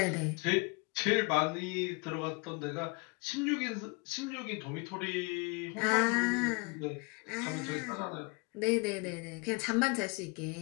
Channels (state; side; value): quieter; right; 29.7 dB